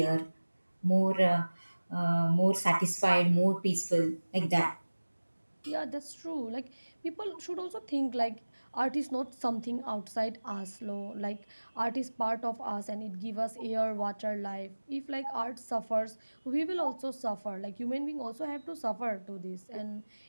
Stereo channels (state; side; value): inverted; both; correlation -1.00